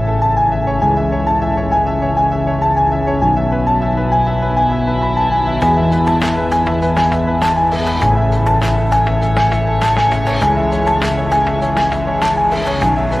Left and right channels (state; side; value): noise; left; hum, 11 dB below the sound